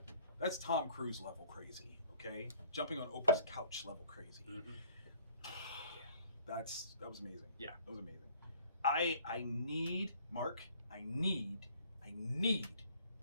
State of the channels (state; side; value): inverted; both; correlation -0.56